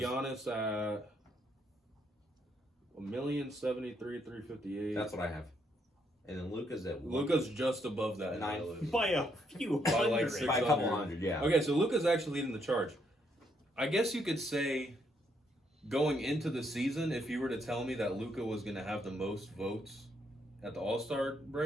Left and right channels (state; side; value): normal; both; correlation 0.74